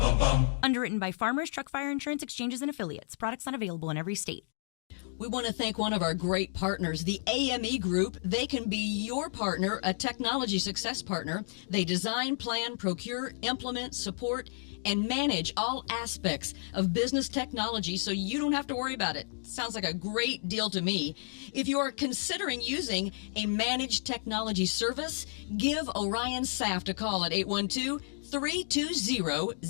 bum. Underwritten by Farmers Truck Fire Insurance Exchanges and Affiliates. Products not available in every state. We want to thank one of our great partners, the AME Group. They can be your partner, a technology success partner. They design, plan, procure, implement, support, and manage all aspects of business technology so you don't have to worry about it. Sounds like a great deal to me. If you are considering using a managed technology service, give Orion Saft a call at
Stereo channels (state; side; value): silent; right; digital silence